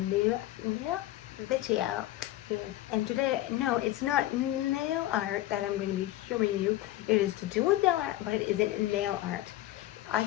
video. And today, no, it's not nail art that I'm going to be showing you. It is to do with nail art, but it isn't nail art. I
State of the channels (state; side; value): quieter; right; 15.4 dB